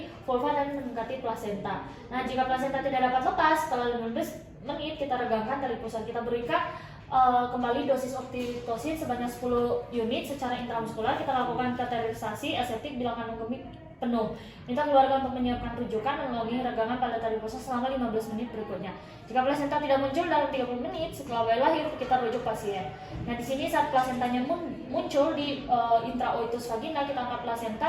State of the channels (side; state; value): both; identical; correlation 1.00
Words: vulva dan mendekati plasenta. Nah, jika plasenta tidak dapat lepas setelah 15 menit, kita regangkan tali pusar. Kita berikan kembali dosis oksitosin sebanyak 10 unit secara intramuskular. Kita lakukan kateterisasi aseptik bila kandung kemih penuh. Minta keluarga untuk menyiapkan rujukan dan melalui regangan pada tali pusar selama 15 menit berikutnya. Jika plasenta tidak muncul dalam 30 menit setelah bayi lahir, kita rujuk pasien. Nah, di sini saat plasentanya muncul di intraoitus vagina, kita angkat